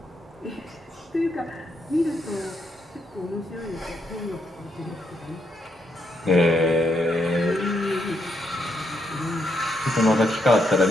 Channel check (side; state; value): both; normal; correlation 0.78